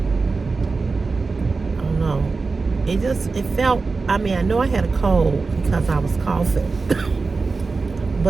don't know. It felt, I know I had a cold because I was coughing.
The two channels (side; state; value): left; quieter; 4.1 dB